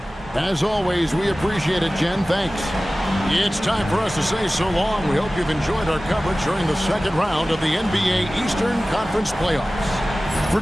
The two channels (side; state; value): both; normal; correlation 0.97